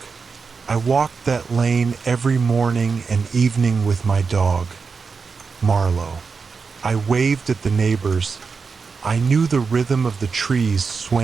I walked that lane every morning and evening with my dog, Marlowe. I waved at the neighbors. I knew the rhythm of the trees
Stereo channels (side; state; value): left; quieter; 5.1 dB